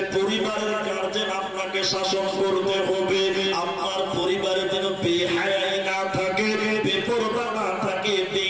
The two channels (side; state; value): both; identical; correlation 1.00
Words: পরিবারের গার্জেন আপনাকে শাসন করতে হবে। আপনার পরিবারে যেন বেহায়াই না থাকে, বেপরোয়া না থাকে,